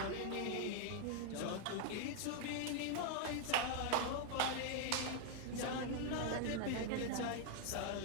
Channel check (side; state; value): both; different; correlation 0.00